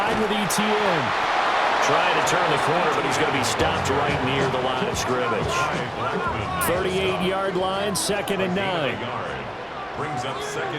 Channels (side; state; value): both; identical; correlation 1.00